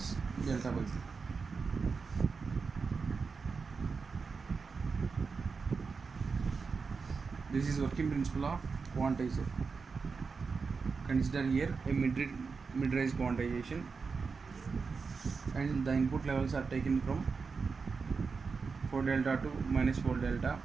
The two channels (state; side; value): quieter; left; 4.9 dB